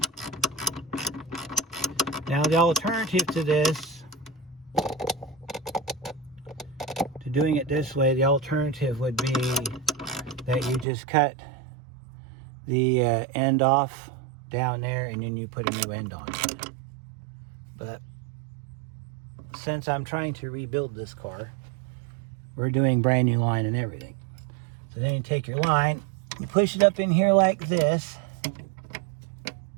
Now the alternative to this, to doing it this way, the alternative would be that you just cut the end off down there and then you put a new end on it. But since I'm trying to rebuild this car, we're doing brand new line and everything. So then you take your line, you push it up in here like this,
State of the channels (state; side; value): drops out; left; at 10.9 s